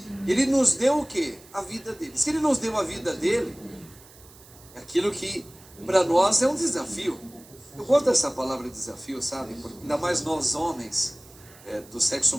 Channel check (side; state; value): right; noise; hiss, 23 dB below the sound